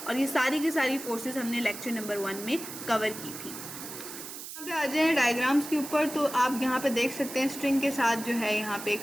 और ये सारी की सारी फोर्सेस हमने लेक्चर नंबर 1 में कवर की थी। यहाँ पे आ जाए डायग्राम्स के ऊपर, तो आप यहाँ पे देख सकते हैं स्ट्रिंग के साथ जो है यहाँ पे एक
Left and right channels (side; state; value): right; noise; hiss, 10 dB below the sound